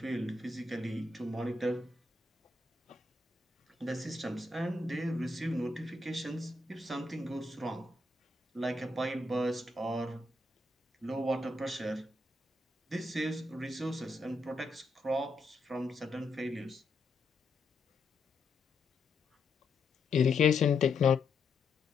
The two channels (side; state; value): right; quieter; 3.2 dB